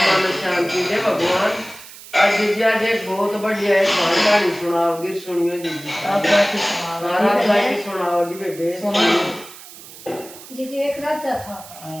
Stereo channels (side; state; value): right; noise; hiss, 17 dB below the sound